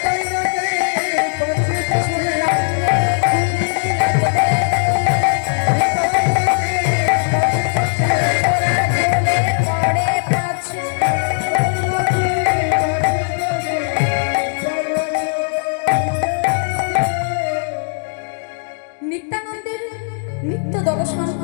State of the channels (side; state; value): right; silent; 56 dB below the other